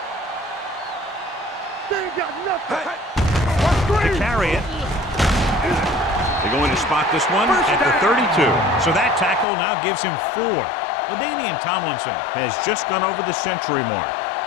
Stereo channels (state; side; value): drops out; right; at 9.5 s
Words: They ain't got nothing. To carry it. They're going to spot this one at the 32. So that tackle now gives him 4. LaDainian Tomlinson has just gone over the century mark.